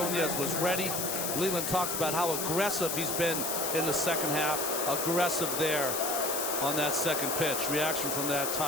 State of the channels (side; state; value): left; noise; hiss, 1 dB below the sound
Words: was ready. Leland talked about how aggressive he's been in the second half. Aggressive there on that second pitch. Reaction from that